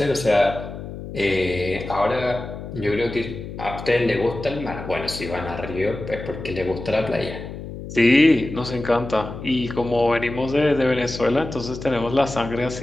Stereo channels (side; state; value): left; noise; hum, 10 dB below the sound